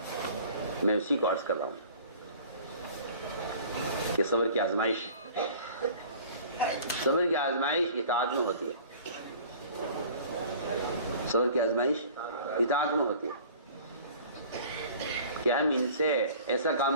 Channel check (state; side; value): inverted; both; correlation -0.47